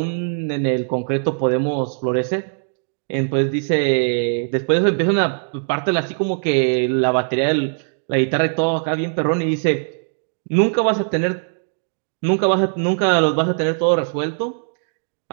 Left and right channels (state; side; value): silent; left; digital silence